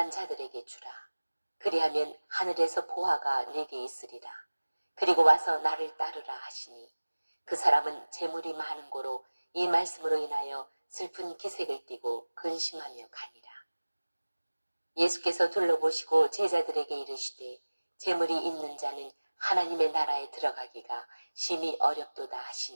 자들에게 주라. 그리하면 하늘에서 보화가 내게 있으리라. 그리고 와서 나를 따르라 하시니 그 사람은 재물이 많은 고로 이 말씀으로 인하여 슬픈 기색을 띠고 근심하며 가니라. 예수께서 둘러보시고 제자들에게 이르시되 재물이 있는 자는 하나님의 나라에 들어가기가 심히 어렵도다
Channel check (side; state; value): both; inverted; correlation -1.00